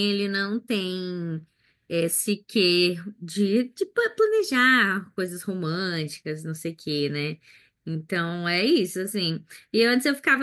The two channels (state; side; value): identical; both; correlation 1.00